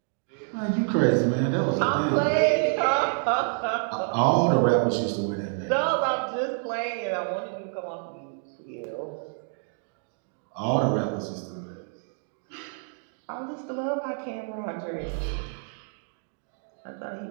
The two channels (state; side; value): silent; left; 60 dB below the other